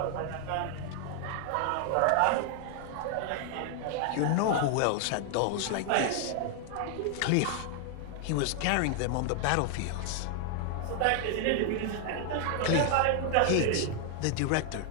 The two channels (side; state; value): both; different; correlation 0.00